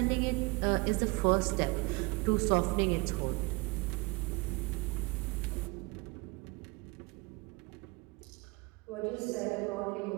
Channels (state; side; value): quieter; left; 26.7 dB